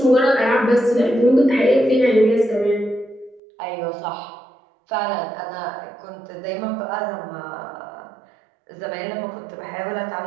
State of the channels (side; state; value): left; drops out; at 3.4 s